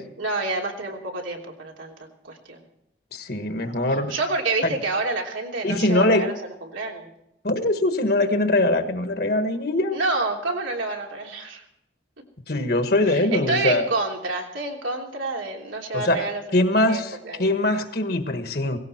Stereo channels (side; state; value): both; normal; correlation 0.05